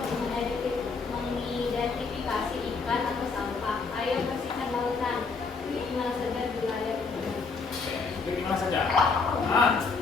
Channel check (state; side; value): quieter; right; 4.6 dB